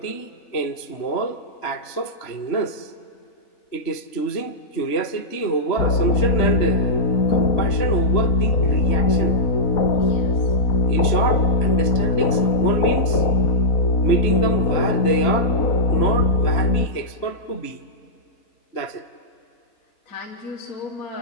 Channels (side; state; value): right; late; 3.0 ms